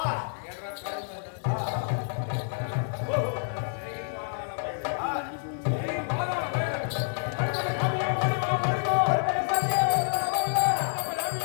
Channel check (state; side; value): silent; right; 56 dB below the other